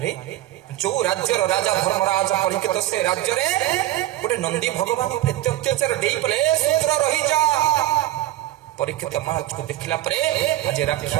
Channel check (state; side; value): quieter; left; 14.8 dB